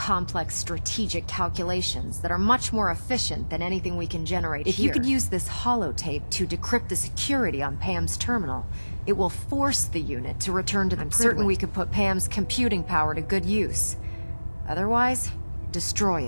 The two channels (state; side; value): inverted; both; correlation -1.00